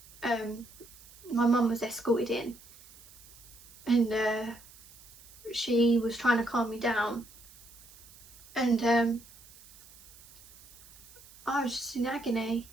My mum was escorted in, and she was trying to calm me down, and I was just in agony.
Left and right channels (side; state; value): right; noise; hiss, 21 dB below the sound